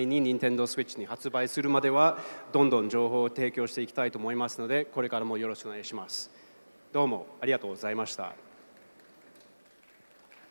に Nintendo Switch に発売するまではどんどん情報を提供していきたいと思いますので、これからもよろしくお願いします。どうもありがとうございました。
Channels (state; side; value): inverted; both; correlation -1.00